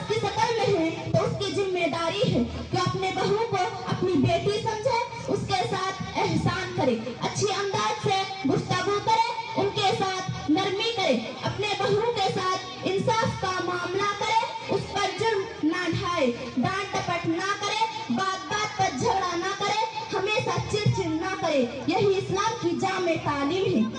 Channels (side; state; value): both; identical; correlation 1.00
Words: की शक्ल में है तो उसकी जिम्मेदारी है कि अपने बहू को अपनी बेटी समझे, उसके साथ एहसान करे, अच्छी अंदाज से गुफ्तगू करे, उनके साथ नरमी करे, अपने बहू के साथ इंसाफ का मामला करे, उस पर जुर्म ना ढाए, डांट टपट ना करे, बात बात पर झगड़ा ना करे, हमेशा चिड़चिड़ ना करे। यही इस्लाम की जामे तालीम है।